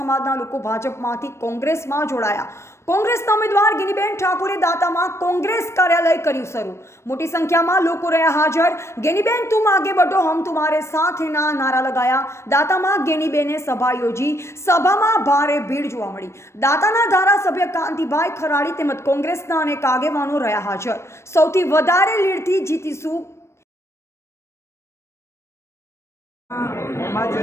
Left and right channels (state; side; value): late; right; 0.13 ms